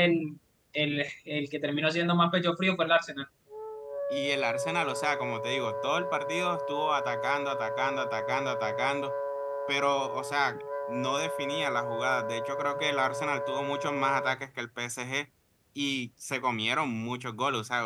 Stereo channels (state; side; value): identical; both; correlation 1.00